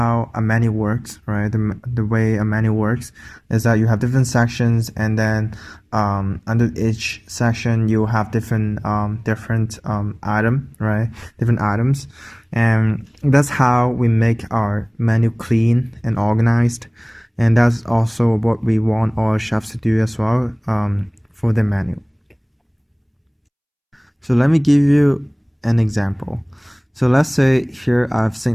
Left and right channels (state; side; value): identical; both; correlation 1.00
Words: a menu works, right? The way a menu works is that you have different sections, and then under each section you have different item, right? Different items, and that's how we make our menu clean and organized, and that's also what we want our chefs to do as well for the menu. So let me give you an example. So let's say here I have